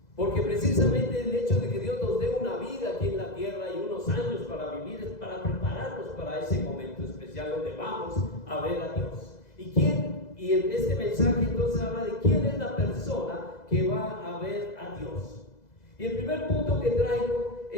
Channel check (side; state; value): right; late; 2.0 ms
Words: Porque precisamente el hecho de que Dios nos dé una vida aquí en la tierra y unos años para vivir es para prepararnos para ese momento especial donde vamos a ver a Dios. Y en este mensaje entonces habla de quién es la persona que va a ver a Dios. Y el primer punto que traigo